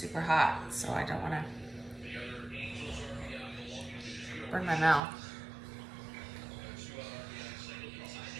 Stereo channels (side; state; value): left; drops out; at 5.0 s